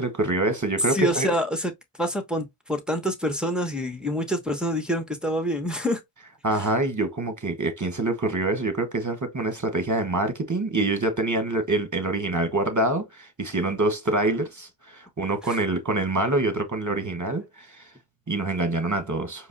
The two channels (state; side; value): normal; both; correlation 0.29